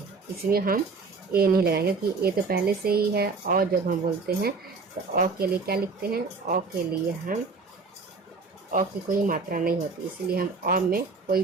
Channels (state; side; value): quieter; left; 4.3 dB